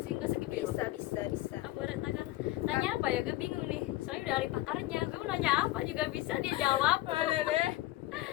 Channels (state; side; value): quieter; right; 17.2 dB